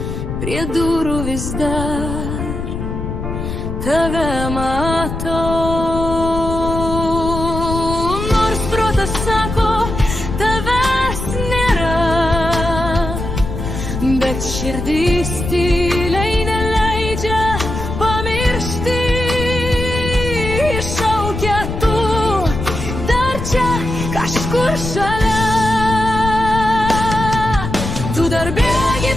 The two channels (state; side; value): noise; left; rumble, 5 dB below the sound